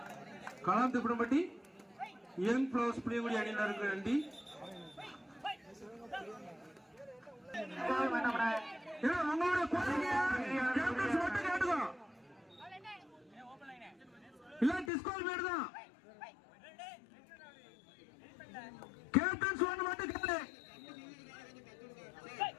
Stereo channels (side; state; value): right; drops out; at 14.9 s